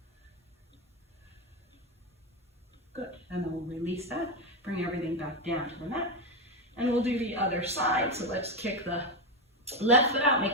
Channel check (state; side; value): normal; both; correlation 0.10